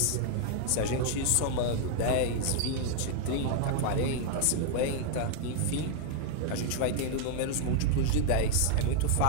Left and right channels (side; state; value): both; different; correlation 0.00